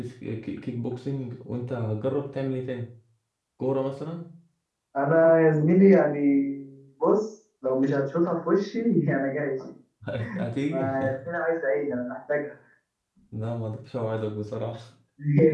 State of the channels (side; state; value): both; identical; correlation 1.00